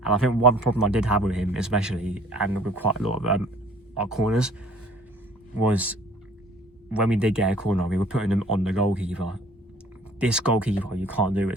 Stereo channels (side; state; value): both; normal; correlation 0.53